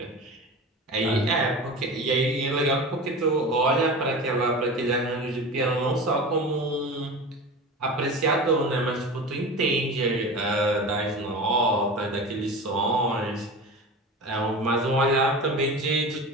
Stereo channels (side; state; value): both; normal; correlation 0.31